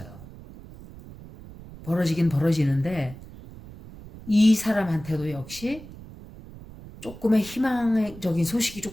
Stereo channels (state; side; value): noise; right; rumble, 17 dB below the sound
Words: 벌어지긴 벌어지는데 이 사람한테도 역시 조금의 희망적인 소식이